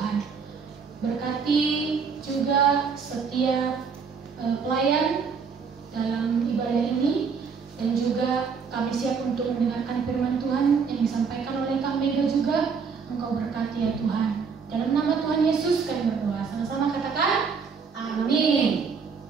Berkati juga setiap pelayan dalam ibadah ini, dan juga kami siap untuk mendengarkan firman Tuhan yang disampaikan oleh Kak Mega juga. Engkau berkati ya Tuhan. Dalam nama Tuhan Yesus kami berdoa. Sama-sama katakan amin.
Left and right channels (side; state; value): left; quieter; 5.7 dB